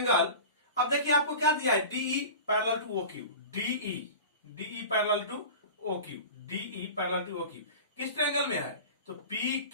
अब देखिए आपको क्या दिया है, DE parallel to O Q, DE parallel to O Q, DE parallel to O Q किस ट्रायंगल में है, तो पी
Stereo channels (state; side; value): inverted; both; correlation -0.35